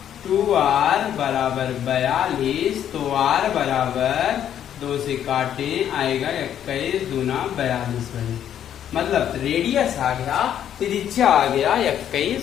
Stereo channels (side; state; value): right; quieter; 10.0 dB